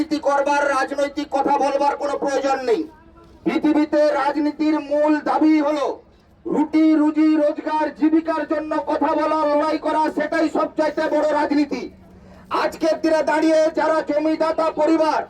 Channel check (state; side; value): identical; both; correlation 1.00